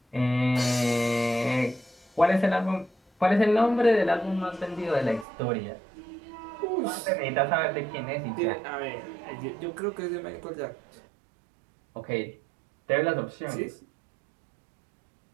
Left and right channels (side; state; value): left; drops out; at 5.2 s